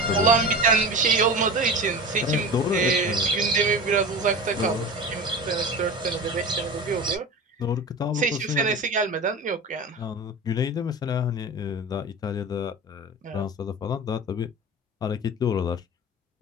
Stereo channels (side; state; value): both; normal; correlation 0.31